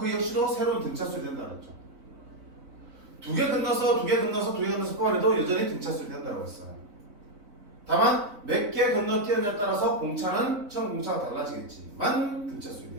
역시도 새로운 등차수열이 된다고 했죠. 두 개 건너서 뽑아내도 여전히 등차수열이 된다고 했어. 다만 몇 개 건너뛰느냐에 따라서 공차는 처음 공차가 달라지겠지만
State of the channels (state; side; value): late; left; 4.7 ms